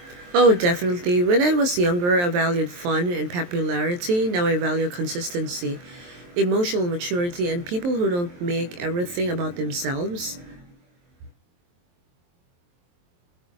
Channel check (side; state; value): left; late; 23 ms